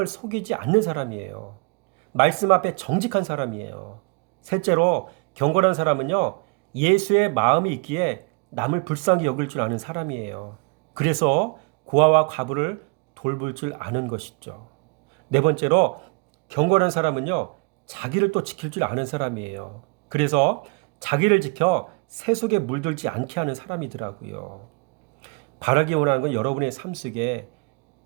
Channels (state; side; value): quieter; left; 33.1 dB